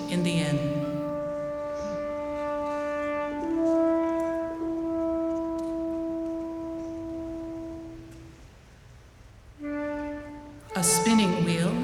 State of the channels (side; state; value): both; identical; correlation 1.00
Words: in the inn. A spinning wheel,